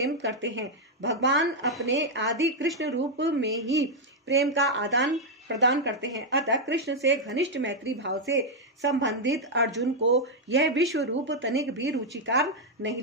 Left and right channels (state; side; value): normal; both; correlation -0.01